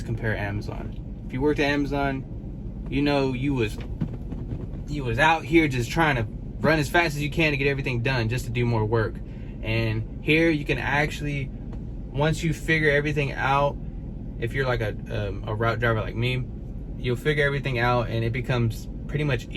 compare Amazon. If you worked at Amazon, you know you was out here just trying to run as fast as you can to get everything done, just to do more work. And here you can actually, once you figure everything out, if you're like a route driver like me, you'll figure everything out and it becomes pretty much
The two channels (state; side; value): identical; both; correlation 1.00